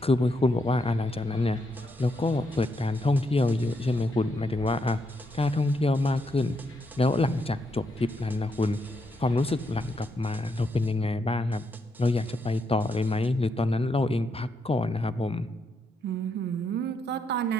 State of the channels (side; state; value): both; normal; correlation 0.79